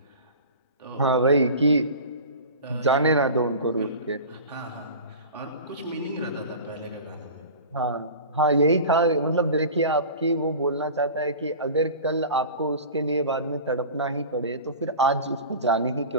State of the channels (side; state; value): both; inverted; correlation -0.36